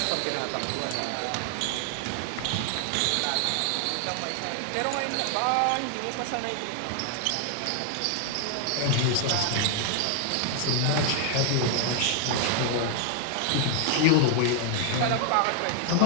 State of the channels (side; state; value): both; different; correlation 0.00